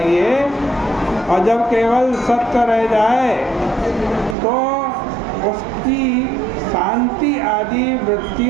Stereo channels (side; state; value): left; drops out; at 4.4 s